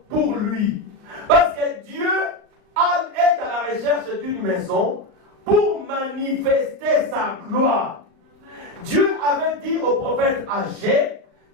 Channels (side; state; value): left; late; 38 ms